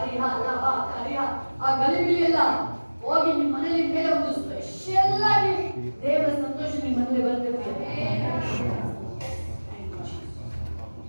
riha la ba ka riha. ಆ ಗಲಿಬಿಲಿಯೆಲ್ಲ ಹೋಗಿ ನಿಮ್ಮ ಮನೆಯಲ್ಲಿ ಮೇಲೆ ಒಂದು ಸ್ಪೆಷಲ್ ಆಗಿ ದೇವರ ಸಂತೋಷ ನಿಮ್ಮ ಮನೆಯಲ್ಲಿ ಬರಬೇಕು.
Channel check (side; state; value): both; inverted; correlation -1.00